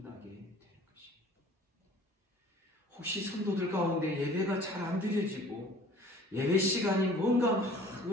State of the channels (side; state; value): both; normal; correlation 0.49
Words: 되는 것입니다. 혹시 성도들 가운데 예배가 잘 안 드려지고 예배 시간이 뭔가 막